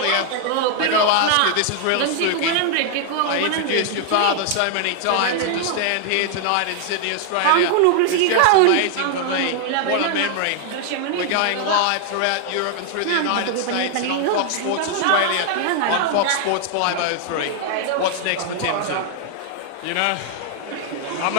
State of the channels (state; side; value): different; both; correlation 0.00